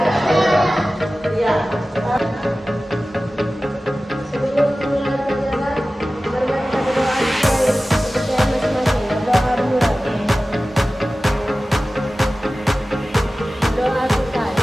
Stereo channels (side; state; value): both; normal; correlation 0.96